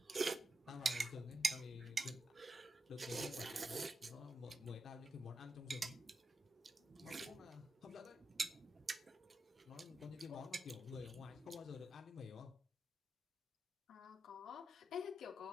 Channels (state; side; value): normal; both; correlation 0.87